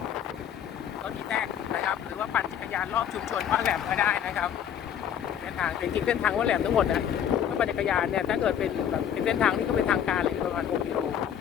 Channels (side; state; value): right; quieter; 9.3 dB